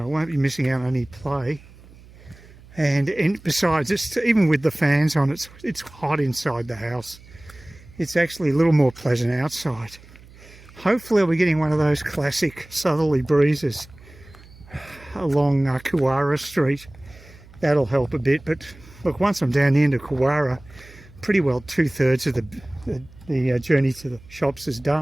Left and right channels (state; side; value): noise; right; hum, 22 dB below the sound